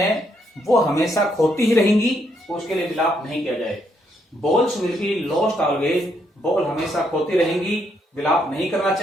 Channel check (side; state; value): both; normal; correlation 0.75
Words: वो हमेशा खोती ही रहेंगी, उसके लिए विलाप नहीं किया जाए। Balls will be lost always, ball हमेशा खोती रहेंगी, विलाप नहीं करना